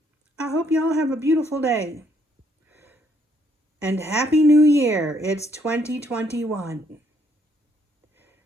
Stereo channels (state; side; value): normal; both; correlation 0.69